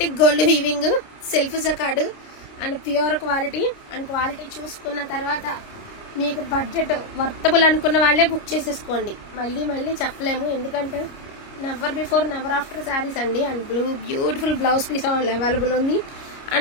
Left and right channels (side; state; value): right; late; 29 ms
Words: gold weaving, self jacquard and pure quality. And quality చూసుకున్న తర్వాత మీకు బడ్జెట్ వర్తబుల్ అనుకున్న వాళ్ళే బుక్ చేసేసుకోండి. మళ్ళీ మళ్ళీ చెప్పలేము, ఎందుకంటే never before never after saris అండి. And beautiful blouse piece available ఉంది.